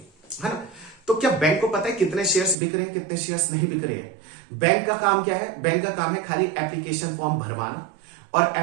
है ना। तो क्या बैंक को पता है कितने शेयर्स बिक रहे हैं, कितने शेयर्स नहीं बिक रहे हैं? बैंक का काम क्या है? बैंक का काम है खाली एप्लीकेशन फॉर्म भरवाना, और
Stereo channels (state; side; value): drops out; left; at 2.6 s